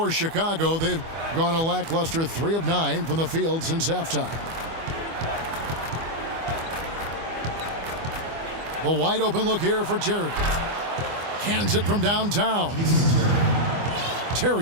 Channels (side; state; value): left; late; 25 ms